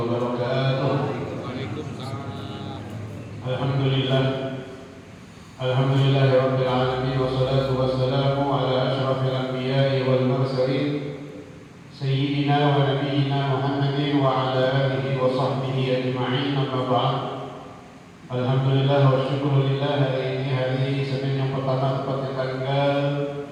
الحمد لله رب العالمين والصلاة والسلام على أشرف الأنبياء والمرسلين سيدنا ونبينا محمد وعلى آله وصحبه أجمعين. أما بعد. Alhamdulillah wa syukurillah, hari ini hari Senin yang pertama tepatnya tanggal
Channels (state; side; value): identical; both; correlation 1.00